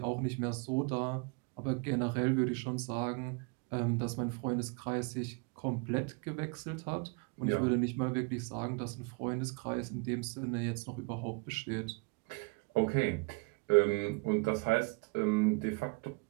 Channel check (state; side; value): quieter; left; 31.5 dB